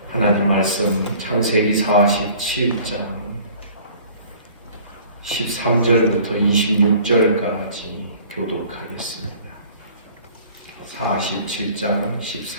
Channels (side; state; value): both; inverted; correlation -0.50